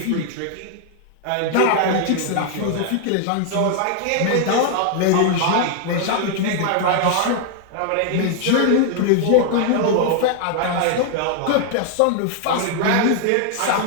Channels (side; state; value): both; different; correlation 0.00